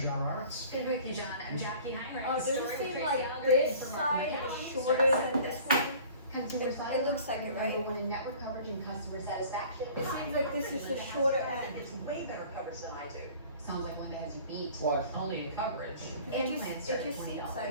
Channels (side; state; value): both; inverted; correlation -0.47